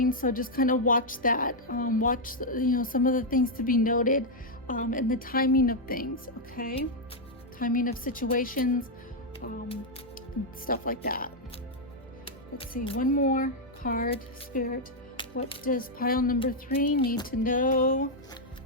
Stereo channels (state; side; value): normal; both; correlation -0.02